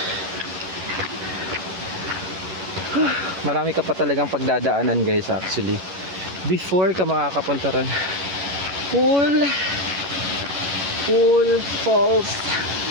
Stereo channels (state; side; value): late; left; 11 ms